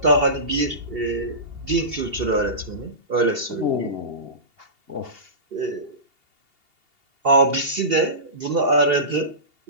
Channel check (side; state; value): left; late; 2.8 ms